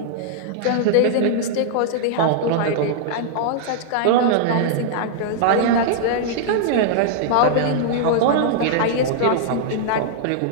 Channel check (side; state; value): both; different; correlation -0.01